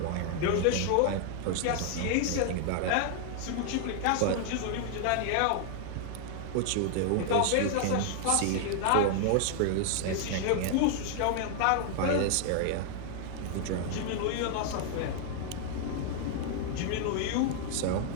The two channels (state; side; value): different; both; correlation 0.00